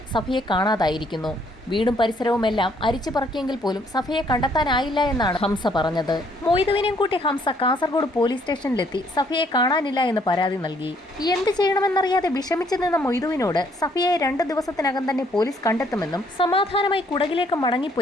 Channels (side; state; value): both; normal; correlation 0.66